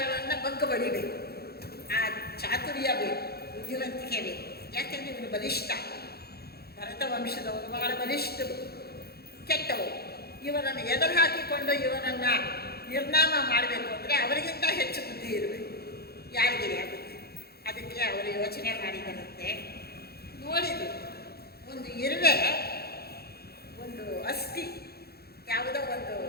ಬಗ್ಗು ಬಡಿಬೇಕು. ಆ ಚಾತುರ್ಯ ಬೇಕು, ಬುದ್ಧಿವಂತಿಕೆ ಬೇಕು. ಯಾಕೆಂದರೆ ಇವನು ಬಲಿಷ್ಠ, ಭರತ ವಂಶದವರು ಬಹಳ ಬಲಿಷ್ಠರು, ಕೆಟ್ಟವರು. ಇವರನ್ನು ಎದುರು ಹಾಕಿಕೊಂಡು ಇವರನ್ನು ನಿರ್ನಾಮ ಮಾಡಬೇಕು ಅಂದರೆ ಅವರಿಗಿಂತ ಹೆಚ್ಚು ಬುದ್ಧಿ ಇರಬೇಕು. ಯಾರಿಗಿದೆ ಆ ಬುದ್ಧಿ? ಅದಕ್ಕೆ ಅವರು ಯೋಚನೆ ಮಾಡಿದರಂತೆ. ನೋಡಿದ್ರು, ಒಂದು ಇರುವೆ, ಒಂದು ಅಸ್ಥಿ, ಯಾವುದೋ ಒಂದು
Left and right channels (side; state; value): right; late; 0.46 ms